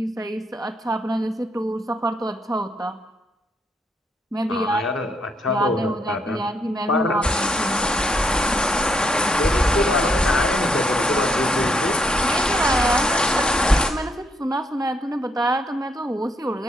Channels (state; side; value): normal; both; correlation 0.75